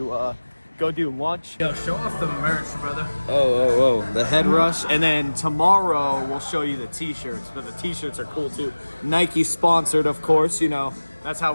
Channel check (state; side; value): inverted; both; correlation -1.00